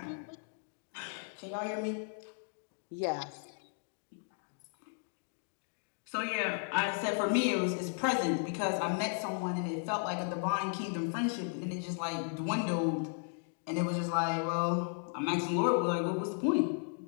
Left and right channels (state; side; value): silent; right; 54 dB below the other